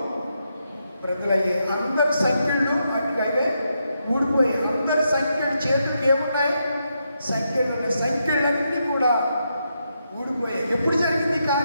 బ్రతులయ్యాయి. అందరి సంఖ్యలు అటువైవే ఊడిపోయాయి. అందరి సంఖ్యలు చేతులకు ఏమున్నాయి? సంఖ్యలు ఉన్నాయి. సంఖ్యలన్నీ కూడా ఊడిపోయాయి. ఎప్పుడు జరిగింది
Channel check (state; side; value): inverted; both; correlation -0.82